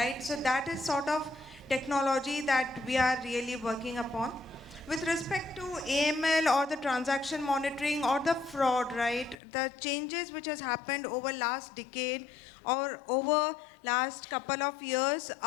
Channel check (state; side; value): drops out; right; at 9.3 s